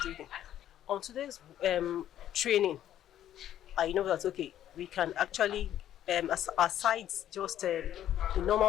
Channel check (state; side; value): quieter; right; 11.5 dB